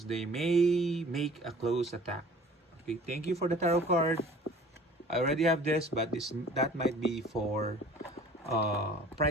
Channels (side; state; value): both; normal; correlation 0.48